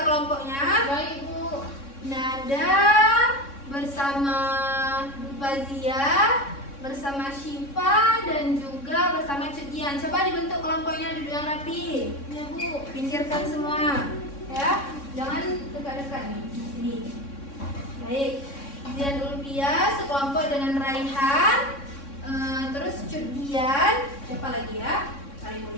kelompoknya. Baik, Bu. Nada bersama Bu Fazia, bersama Syifa, dan juga bersama Cudian. Coba dibentuk kelompoknya, duduk yang rapi. Ya, Bu. Pinggirkan semua, ya. Jangan dekat-dekat nih, di sini. Baik. Dian Ulfia sekelompok dengan Raihan, terus Cudian. Siapa lagi ya? Kali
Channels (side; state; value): right; late; 3.6 ms